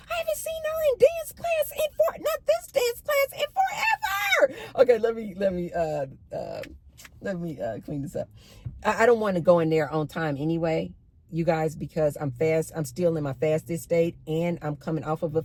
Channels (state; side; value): identical; both; correlation 1.00